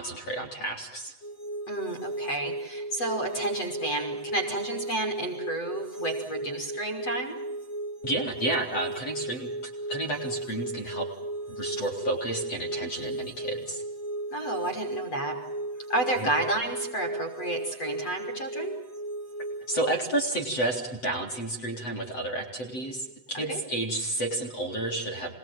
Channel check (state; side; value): late; right; 8.0 ms